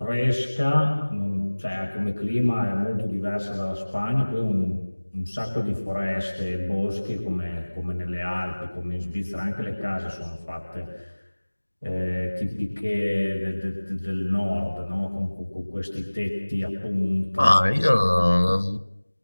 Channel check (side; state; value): both; inverted; correlation -1.00